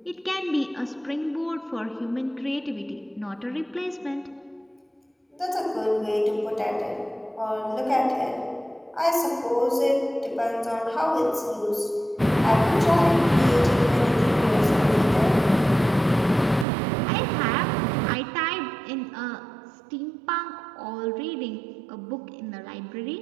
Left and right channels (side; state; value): left; drops out; at 16.7 s